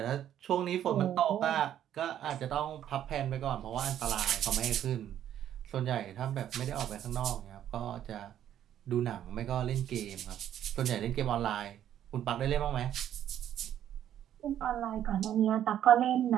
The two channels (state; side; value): quieter; left; 10.8 dB